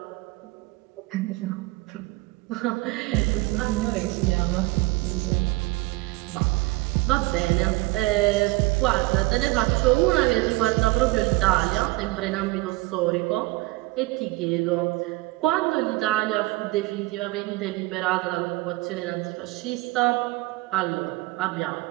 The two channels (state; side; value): quieter; left; 21.4 dB